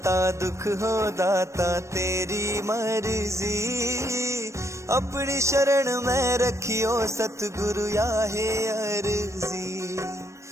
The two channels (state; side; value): late; left; 0.14 ms